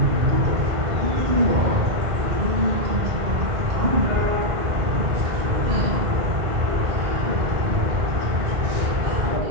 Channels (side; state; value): left; late; 1.5 ms